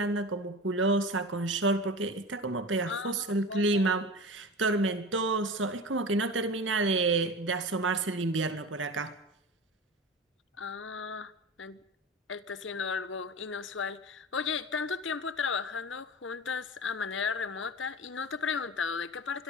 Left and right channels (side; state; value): both; normal; correlation 0.31